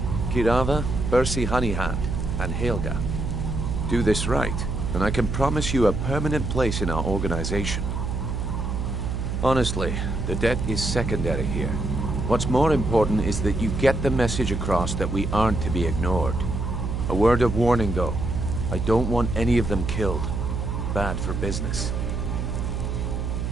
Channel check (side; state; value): right; noise; hum, 2 dB below the sound